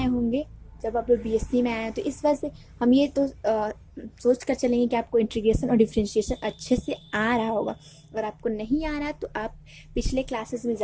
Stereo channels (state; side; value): identical; both; correlation 1.00